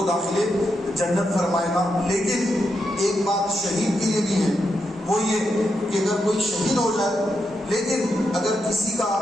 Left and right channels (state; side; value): normal; both; correlation 0.84